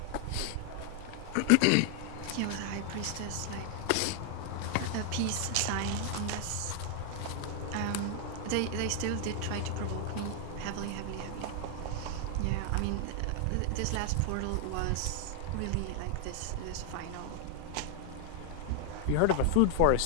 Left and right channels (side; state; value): both; different; correlation 0.00